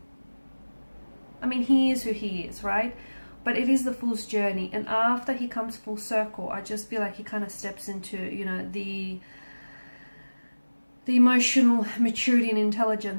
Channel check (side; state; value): both; inverted; correlation -1.00